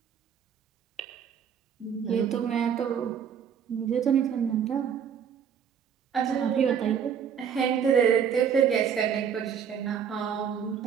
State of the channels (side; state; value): left; quieter; 7.8 dB